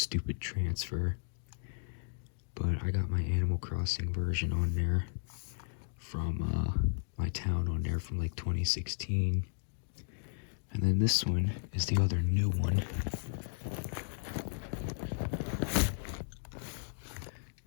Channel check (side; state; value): right; silent; digital silence